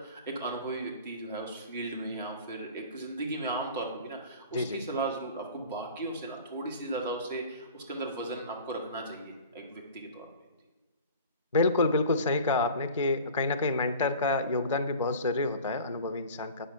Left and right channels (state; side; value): inverted; both; correlation -0.41